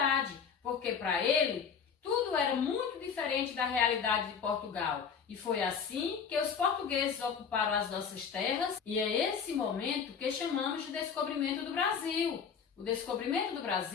porque para ele tudo era muito diferente da realidade de Portugal. E foi assim que os portugueses ocuparam as nossas terras, e é esse momento que chamamos de descobrimento do Brasil. O descobrimento do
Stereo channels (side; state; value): right; quieter; 6.7 dB